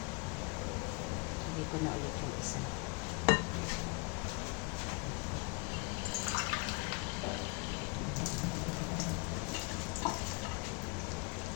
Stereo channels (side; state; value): right; quieter; 32.1 dB